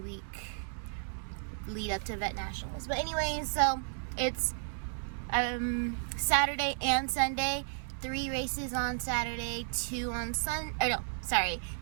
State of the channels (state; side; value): silent; left; digital silence